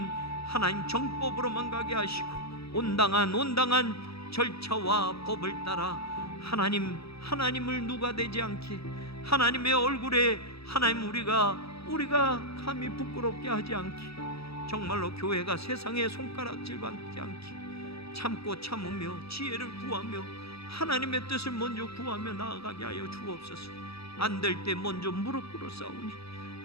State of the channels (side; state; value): right; late; 0.77 ms